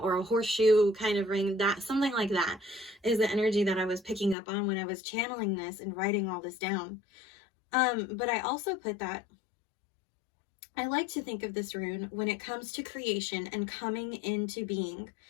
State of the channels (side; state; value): right; drops out; at 4.4 s